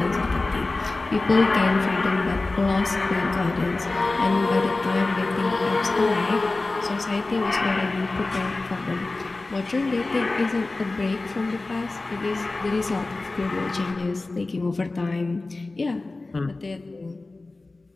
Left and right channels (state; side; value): quieter; right; 3.2 dB